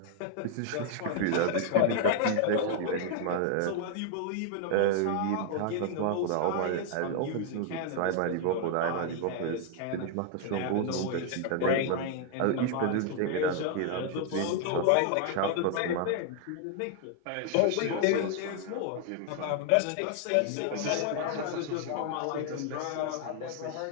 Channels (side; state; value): both; different; correlation 0.00